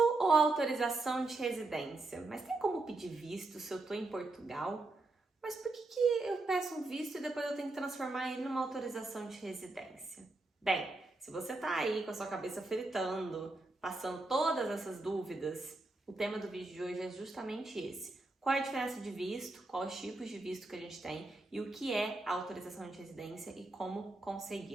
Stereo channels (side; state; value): left; quieter; 3.1 dB